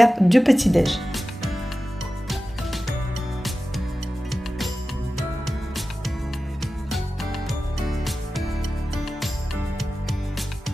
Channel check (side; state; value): both; normal; correlation 0.94